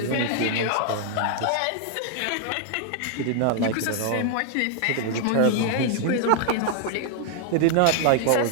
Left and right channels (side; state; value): both; different; correlation 0.00